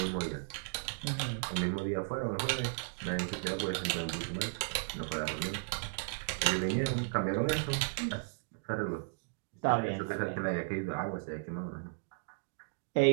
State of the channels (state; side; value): silent; left; digital silence